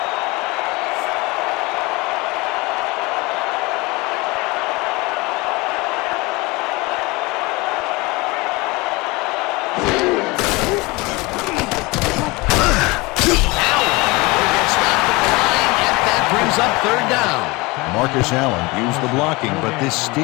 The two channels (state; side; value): quieter; right; 24.1 dB